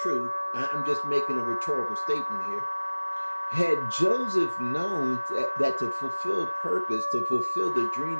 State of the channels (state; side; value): inverted; both; correlation -1.00